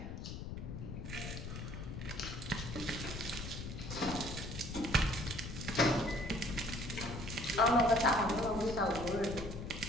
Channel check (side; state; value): left; noise; rumble, 7 dB below the sound